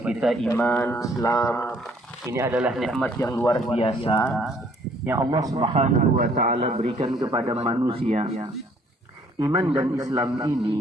kita iman, Islam. Ini adalah nikmat yang luar biasa yang Allah Subhanahu wa taala berikan kepada manusia. Iman dan Islam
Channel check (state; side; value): normal; both; correlation 0.61